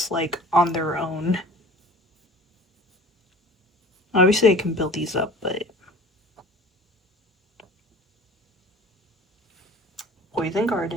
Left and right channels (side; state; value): both; normal; correlation 0.44